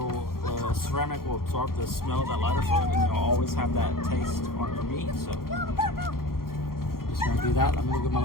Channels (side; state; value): right; late; 0.92 ms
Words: ceramic will absorb the smell of that lighter fluid, and you'll always have that taste on your meat. So just gonna do that. Let me look at my